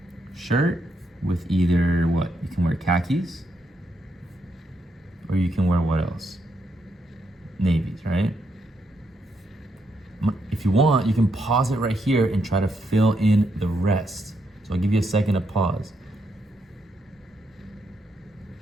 shirt with either what? You can wear khakis, or you can wear what else? Navies, right? If you want, you can pause it right here and try to fill in the rest. So I'll give you a second to pause.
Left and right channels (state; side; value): normal; both; correlation 0.79